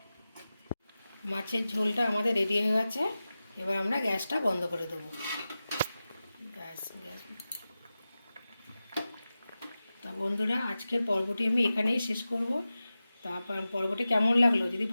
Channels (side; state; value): both; inverted; correlation -0.94